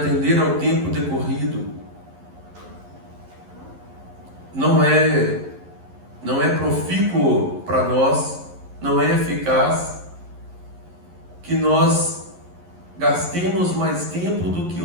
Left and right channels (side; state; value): left; late; 11 ms